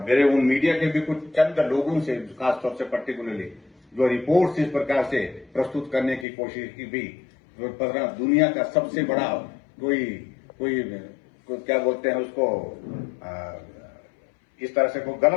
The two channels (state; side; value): drops out; right; at 6.2 s